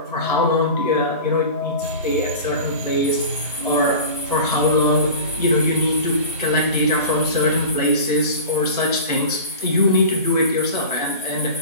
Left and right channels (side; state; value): both; inverted; correlation -0.35